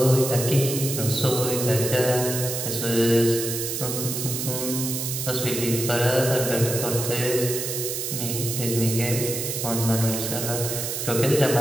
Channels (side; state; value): right; noise; hiss, 3 dB below the sound